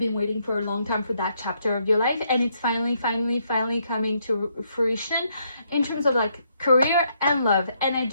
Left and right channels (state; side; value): inverted; both; correlation -0.74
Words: waiting for a long time for that chapter of your life, and it's finally coming to fruition in terms of like career and love. And I